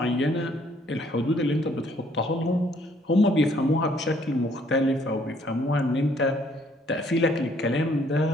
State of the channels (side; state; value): both; normal; correlation 0.64